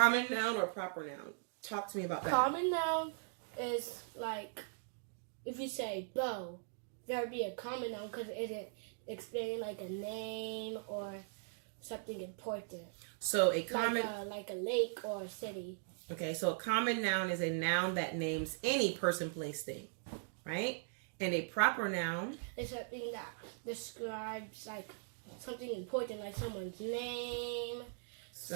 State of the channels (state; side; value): silent; left; digital silence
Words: noun or proper noun? Talk to me about that. Common noun is like, if you say bow, that would be a common noun because it isn't explaining like a name or something important. So a common... Like a lake or a city. Okay, so a common noun is a noun that names any person, place, thing, right? And a proper noun is something that describes like something important, like someone's name.